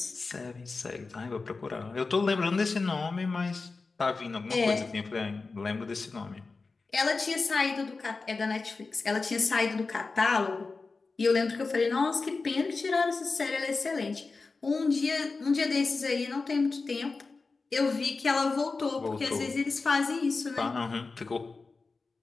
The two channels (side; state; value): right; quieter; 4.1 dB